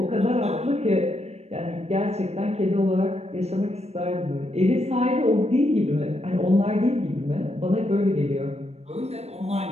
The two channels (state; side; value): late; left; 0.31 ms